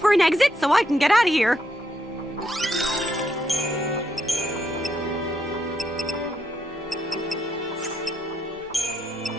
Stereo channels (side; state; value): both; normal; correlation 0.77